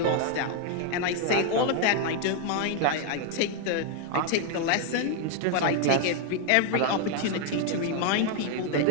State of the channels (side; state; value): both; different; correlation 0.00